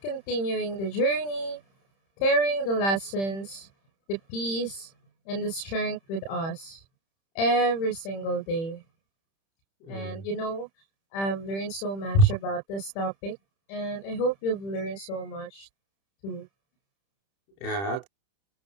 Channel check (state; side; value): late; right; 31 ms